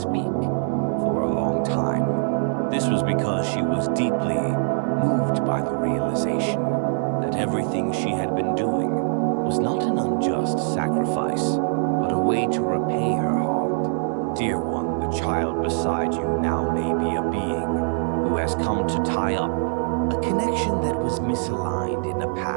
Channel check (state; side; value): silent; left; 63 dB below the other